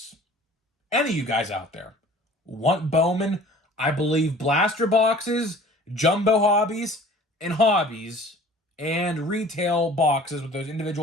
any of you guys out there, want Bowman, I believe blaster boxes, jumbo hobbies, and hobbies, and retail boxes with those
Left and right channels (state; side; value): normal; both; correlation 0.48